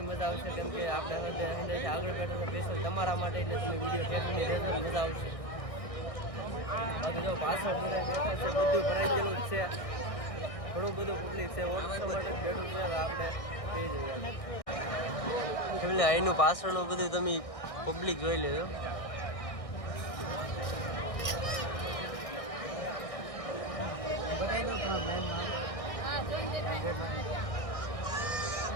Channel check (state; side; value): late; right; 1.6 ms